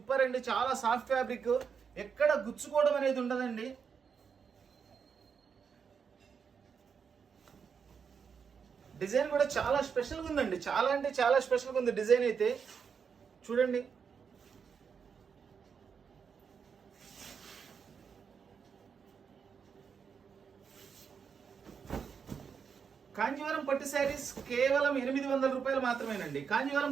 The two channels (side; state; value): left; quieter; 6.4 dB